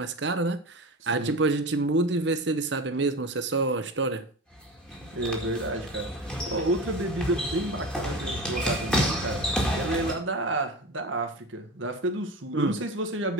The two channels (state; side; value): normal; both; correlation 0.28